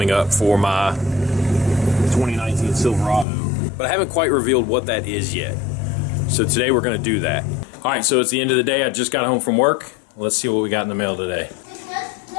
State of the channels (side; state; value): right; drops out; at 3.2 s